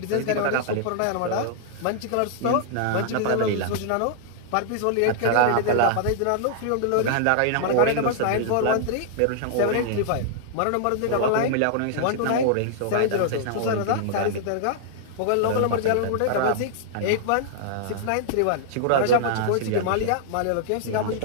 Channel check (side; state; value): both; different; correlation -0.01